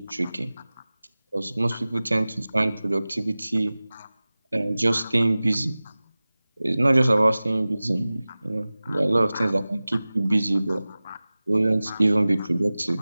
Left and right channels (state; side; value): inverted; both; correlation -0.98